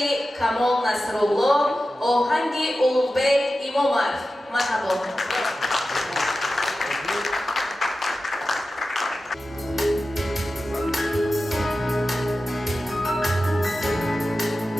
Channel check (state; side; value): normal; both; correlation 0.94